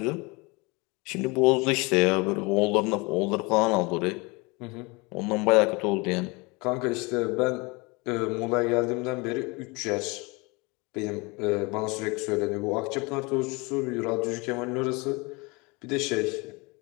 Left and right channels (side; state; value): right; quieter; 26.8 dB